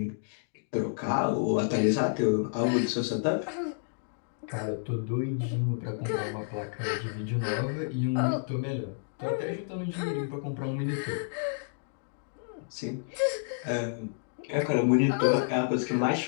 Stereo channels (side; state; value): right; silent; digital silence